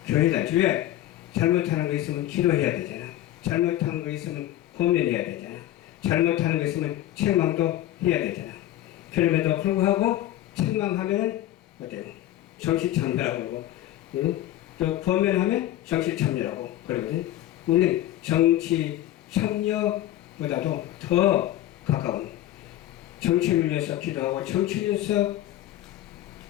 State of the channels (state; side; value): quieter; right; 13.7 dB